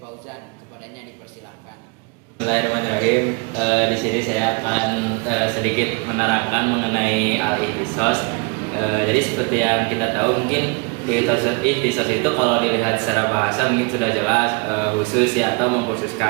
Fauzan. Kepadanya dipersilahkan. Bismillahirrahmanirrahim. Di sini saya akan sedikit menerangkan mengenai al-ihtisos. Jadi seperti yang kita tahu, mungkin ihtisos itu kalau dilihat secara bahasa mungkin sudah jelas khusus ya atau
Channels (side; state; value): left; quieter; 31.9 dB